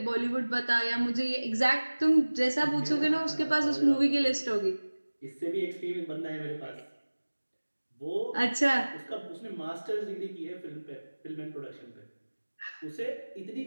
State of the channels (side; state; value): both; inverted; correlation -1.00